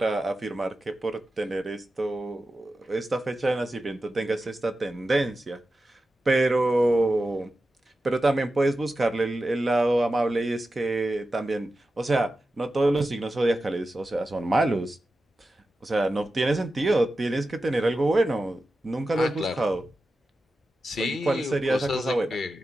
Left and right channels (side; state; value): both; normal; correlation 0.92